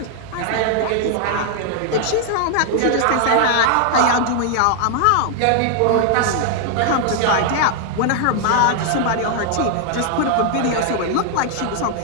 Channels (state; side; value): different; both; correlation 0.00